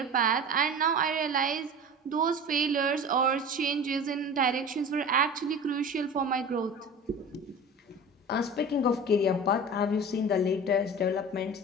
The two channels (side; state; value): both; normal; correlation 0.35